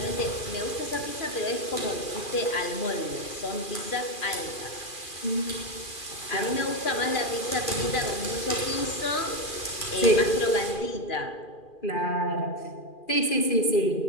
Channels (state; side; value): late; right; 2.4 ms